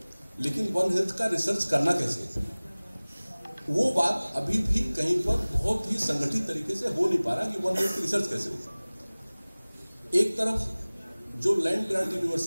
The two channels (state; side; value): inverted; both; correlation -1.00